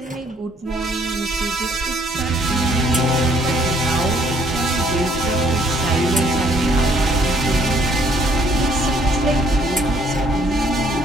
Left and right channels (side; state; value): both; normal; correlation 0.64